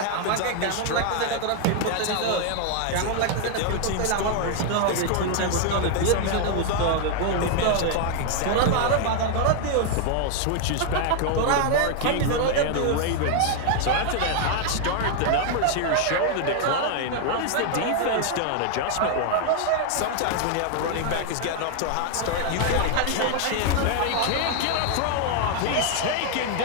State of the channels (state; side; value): different; both; correlation 0.00